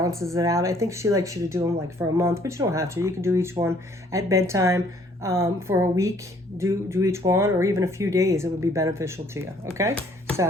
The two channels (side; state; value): both; normal; correlation 0.61